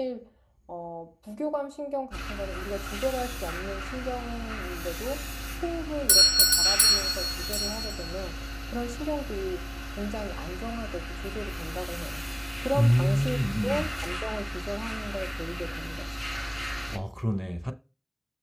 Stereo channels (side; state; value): both; identical; correlation 1.00